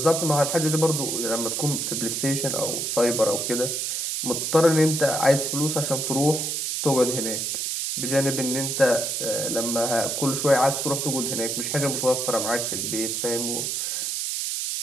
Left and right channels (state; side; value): noise; right; hiss, 1 dB below the sound